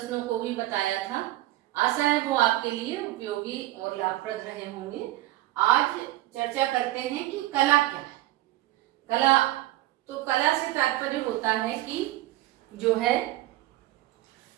को भी बताया था। आशा है वो आपके लिए उपयोगी और लाभप्रद रहे होंगे। आज चर्चा करते हैं कि कला क्या है। कला तो कला से तात्पर्य होता है कि जो है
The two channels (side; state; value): left; quieter; 16.7 dB